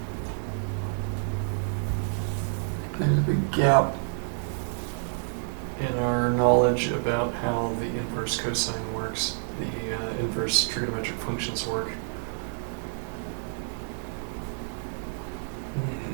there's a big gap in our knowledge about how the inverse cosine works, the inverse trigonometric functions work.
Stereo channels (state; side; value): silent; left; digital silence